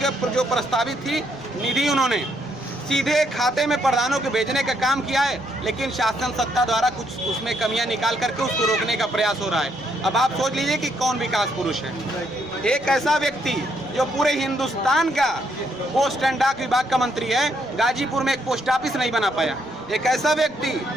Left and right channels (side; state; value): right; noise; rumble, 28 dB below the sound